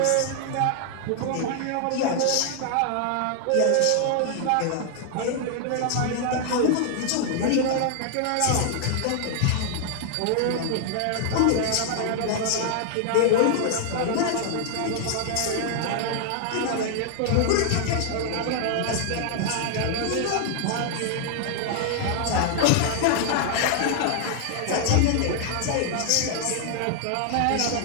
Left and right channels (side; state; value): both; different; correlation 0.00